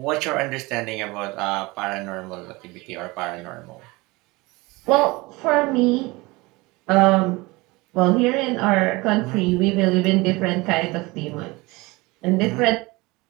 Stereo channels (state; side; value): quieter; left; 23.2 dB